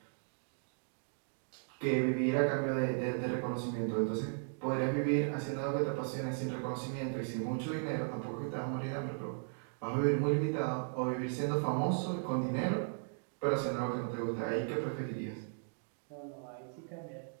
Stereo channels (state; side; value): silent; left; digital silence